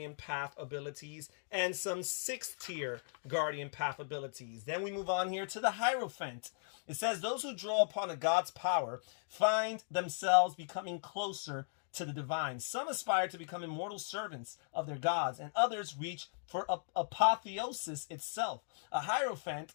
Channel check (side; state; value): right; silent; digital silence